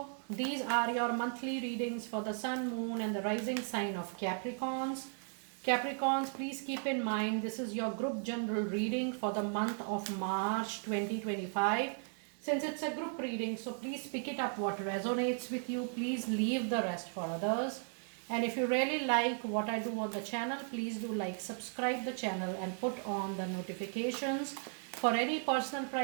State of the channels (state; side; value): silent; left; 54 dB below the other